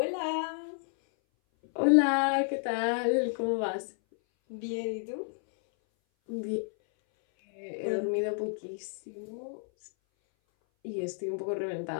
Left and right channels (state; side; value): silent; right; 57 dB below the other